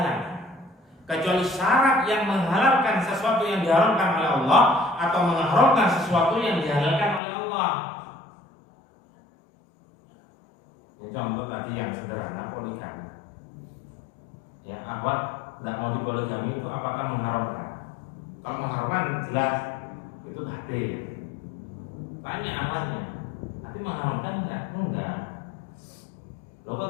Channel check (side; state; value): right; drops out; at 7.2 s